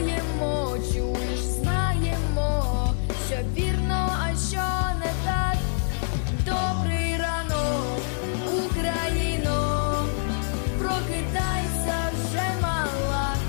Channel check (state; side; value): silent; right; 61 dB below the other